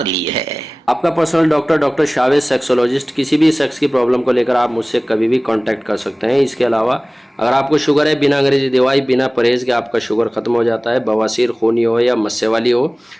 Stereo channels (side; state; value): both; normal; correlation 0.98